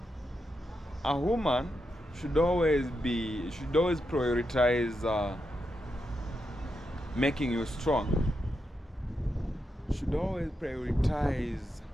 A woman should always prioritize making you strong. Should always prioritize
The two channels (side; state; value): both; normal; correlation 0.85